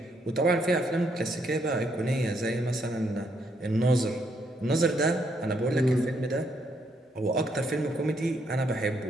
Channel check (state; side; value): normal; both; correlation 0.74